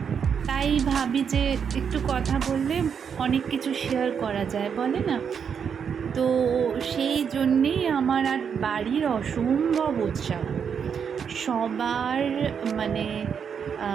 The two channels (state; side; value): quieter; left; 7.1 dB